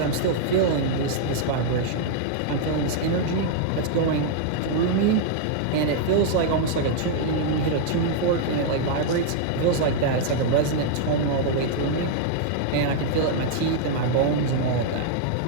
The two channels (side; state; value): both; different; correlation -0.01